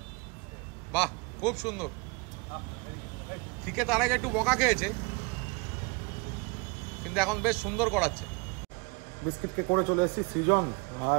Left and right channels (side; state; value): left; quieter; 29.1 dB